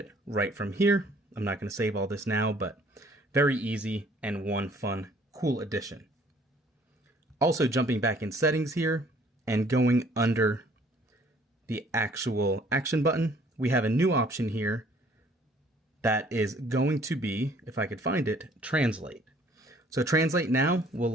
right from here. I'm not going to save all this now, but very easy and one fun, cool addition. Also jumping back in settings here and going under the actual action button, we have a new option here that is going to be, if I could find it, translate. So translate now will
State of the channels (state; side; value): normal; both; correlation 0.58